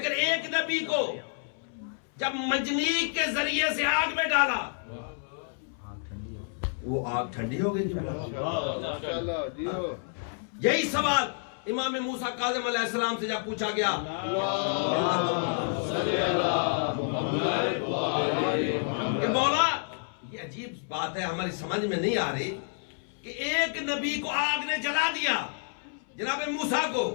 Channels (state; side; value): silent; right; 58 dB below the other